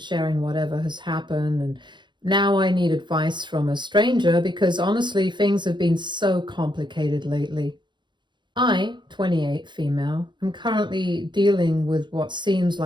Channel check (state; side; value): late; left; 0.22 ms